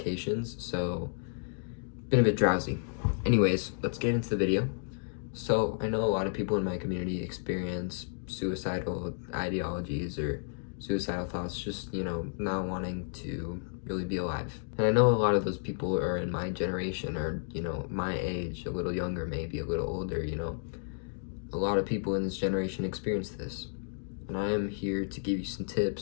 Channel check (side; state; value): right; silent; digital silence